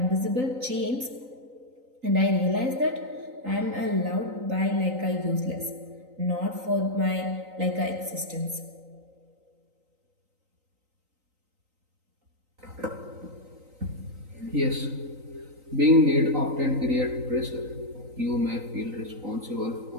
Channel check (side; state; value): left; late; 3.9 ms